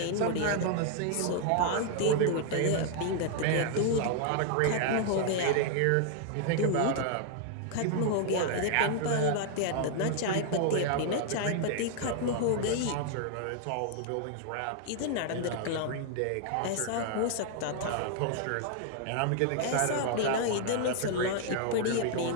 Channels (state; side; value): different; both; correlation 0.00